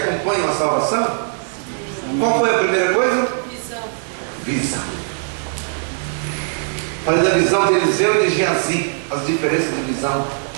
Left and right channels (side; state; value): left; silent; 66 dB below the other